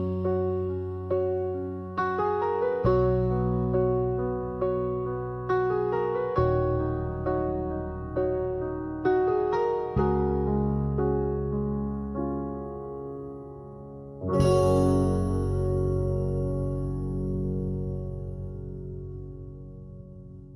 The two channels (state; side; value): identical; both; correlation 1.00